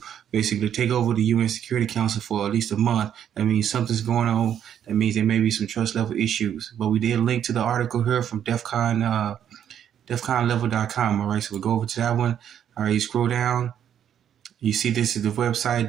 basically take over the UN Security Council for at least a month, that means something's going on. That means there may be some trust level issues. But we did link to the article here from Defcon, defconlevel.com. All right, so we'll go over to that one. All right, you scroll down. You see this is the website,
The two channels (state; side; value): quieter; left; 9.5 dB